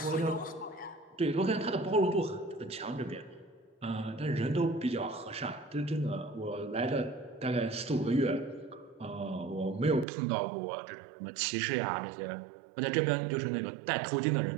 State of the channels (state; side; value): drops out; left; at 10.1 s